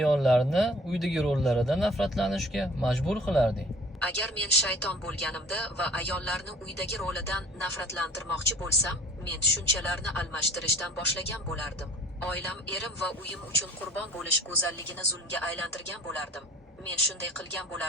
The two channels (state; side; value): normal; both; correlation 0.49